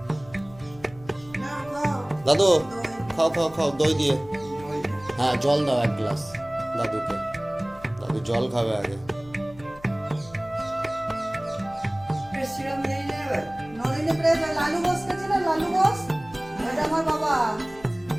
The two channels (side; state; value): left; noise; hum, 22 dB below the sound